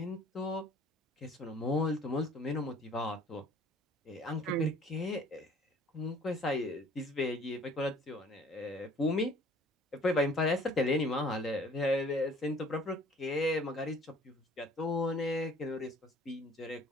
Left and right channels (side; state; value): both; normal; correlation 0.54